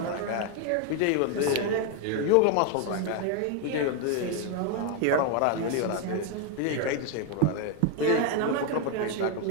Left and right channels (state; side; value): different; both; correlation 0.02